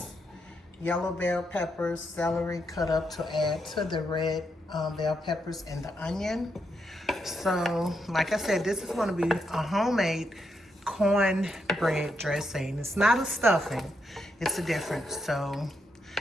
yellow bell peppers, celery cut up to add to the red bell peppers and the onion. So, like I said, this is going to be a homemade cornbread dressing. It's not a stuffing. It's a difference. So,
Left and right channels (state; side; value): normal; both; correlation 0.81